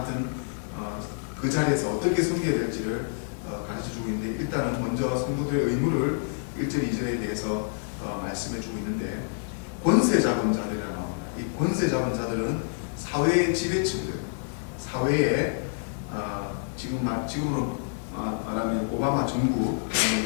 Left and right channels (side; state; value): right; silent; digital silence